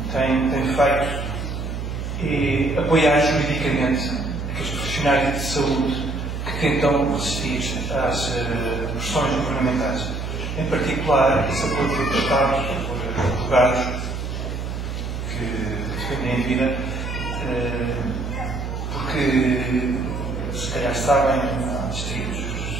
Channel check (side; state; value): right; noise; hum, 5 dB below the sound